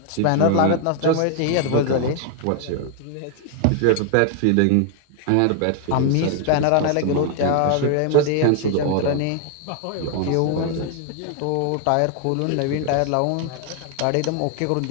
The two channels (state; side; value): different; both; correlation 0.00